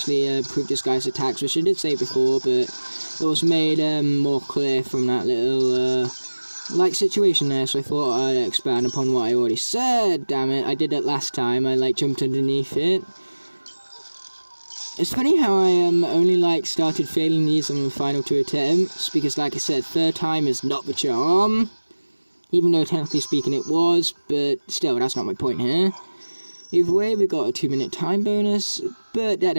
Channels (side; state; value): both; inverted; correlation -1.00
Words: improve this guy's attacks, which I did say before, but it was made more clear from that little like situation there, so I thought I'd expand upon what I already said. Damn it, I did it last time. I like jumped underneath it. It's funny how I only like started failing these on the final 2 attempts, because like I said, third time is not the charm. Even though technically speaking it was, but still, that's not my point here. Either way, we got a 2-minute time bonus, but that